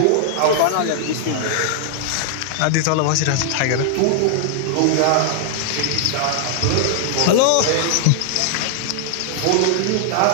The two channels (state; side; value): different; both; correlation -0.01